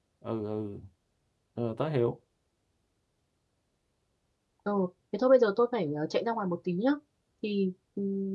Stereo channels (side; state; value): both; identical; correlation 1.00